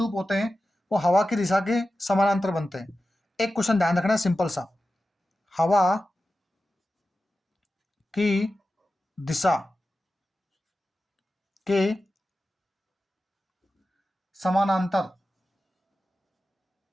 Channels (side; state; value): both; normal; correlation 0.93